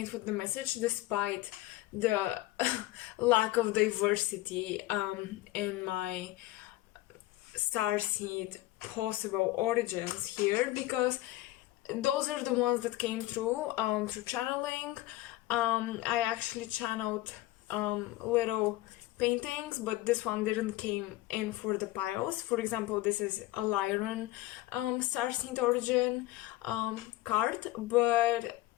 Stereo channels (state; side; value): quieter; right; 17.1 dB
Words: with the message despite the lack of diversity in my starseed possible origins here, because those are the ones that came through channeling. I actually channeled little paintings, but this one didn't came in for the piles. For example, this is a Lyran starseed origin card, but